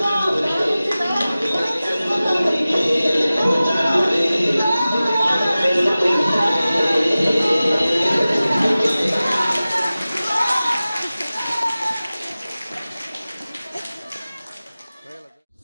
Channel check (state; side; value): inverted; both; correlation -0.97